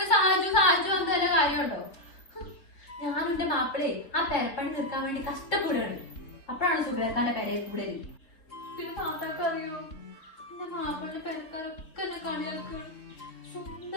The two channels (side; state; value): right; late; 3.9 ms